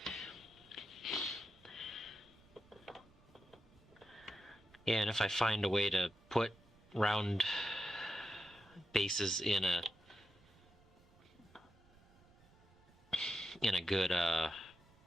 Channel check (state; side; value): noise; right; rumble, 27 dB below the sound